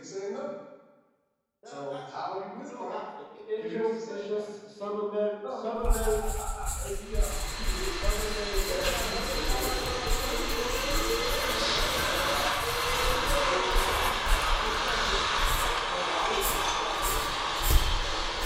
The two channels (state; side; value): identical; both; correlation 1.00